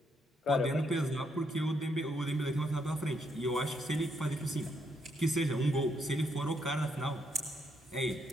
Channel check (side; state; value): both; normal; correlation 0.76